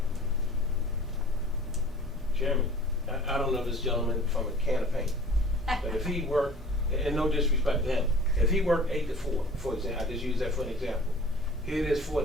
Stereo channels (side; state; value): both; normal; correlation 0.45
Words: Chairman, I don't know this gentleman from a can of paint, but if he worked, and no disrespect to him, if he worked 8 to 4, for example, I just use that for an example. Here it is